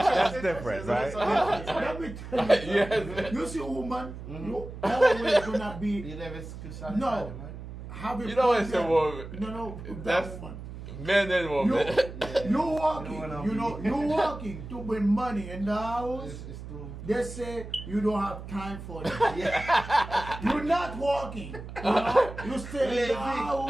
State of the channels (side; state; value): right; noise; hum, 11 dB below the sound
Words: different, right? Let me tell you. Yes. You see a woman, you always gonna be You never could satisfy no. them, right? Have a You know it's a problem. woman. No, That's- that woman. Men and You, women. you walking, You know what I mean? you walking to bring money in the house. It's too. They say you don't have time for that. You're not walking. You know? You stay in the